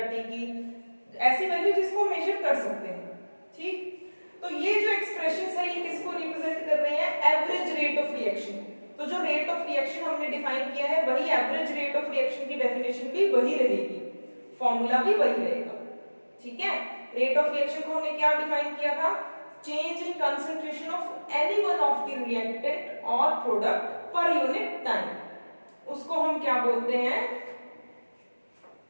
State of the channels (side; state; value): both; inverted; correlation -1.00